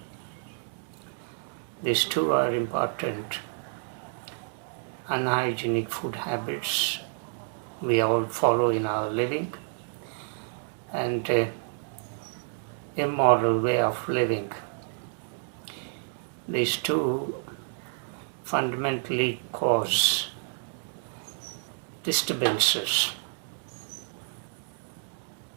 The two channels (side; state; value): left; silent; 58 dB below the other